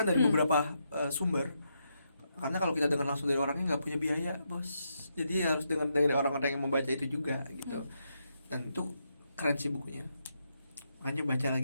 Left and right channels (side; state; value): both; inverted; correlation -0.81